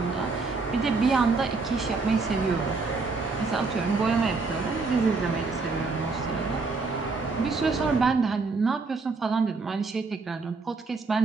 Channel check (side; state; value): left; quieter; 4.1 dB